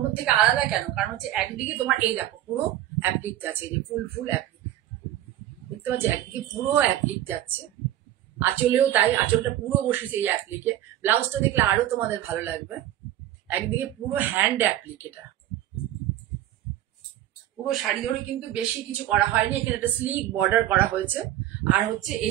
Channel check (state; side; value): quieter; left; 13.1 dB